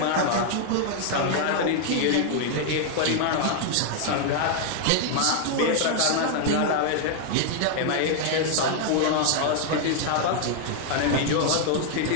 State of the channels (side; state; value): both; different; correlation 0.00